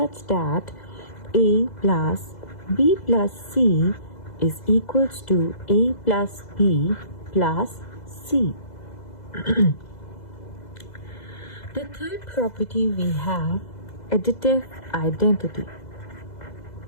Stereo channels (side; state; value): right; late; 2.0 ms